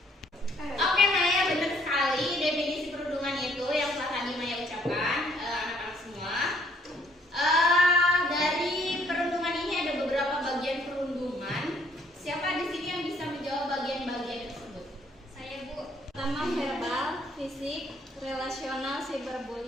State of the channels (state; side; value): normal; both; correlation 0.64